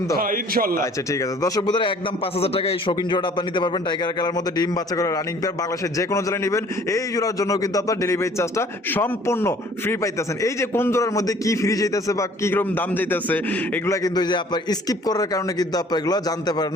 তো? হ্যাঁ ইনশাআল্লাহ। আচ্ছা ঠিক আছে দর্শক বন্ধুরা, একদম 5000 টাকা এই শৌখিন জোড়া আপনি নিতে পারবেন। টাইগার কালার মধ্যে ডিম বাচ্চা করে রানিং পেয়ার। বাংলাদেশের যে কোনো জেলায় নেবেন, এই জোড়ার জন্য কিন্তু আপনার ডেলিভারি চার্জটা সম্পূর্ণ ফ্রি পাইতেছেন। এই যে কোন জোড়ার মধ্যে কি ফ্রি যাইতেছে বা কি রকম দাম যাইতেছে, এগুলা কিন্তু যে আপনার স্কিপ করার কারণে কিন্তু আপনার এগুলো জানতে পারেন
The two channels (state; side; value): normal; both; correlation 0.54